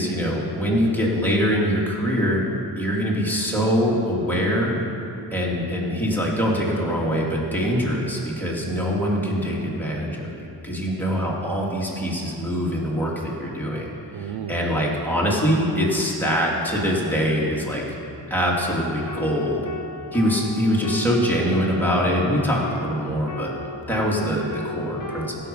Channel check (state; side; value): normal; both; correlation 0.45